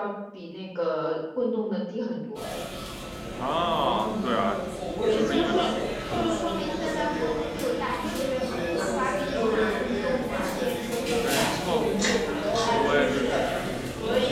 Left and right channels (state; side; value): identical; both; correlation 1.00